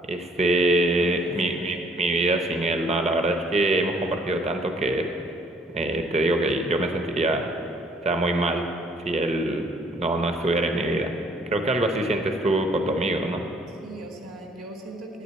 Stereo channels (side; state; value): both; normal; correlation 0.61